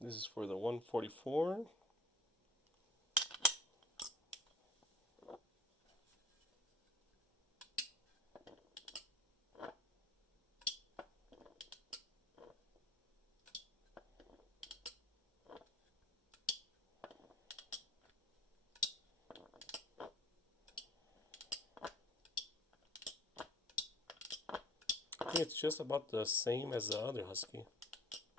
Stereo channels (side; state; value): both; normal; correlation 0.50